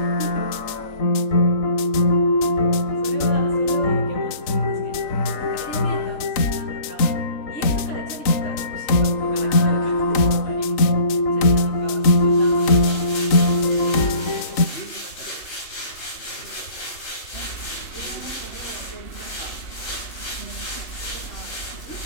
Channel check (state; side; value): late; right; 3.8 ms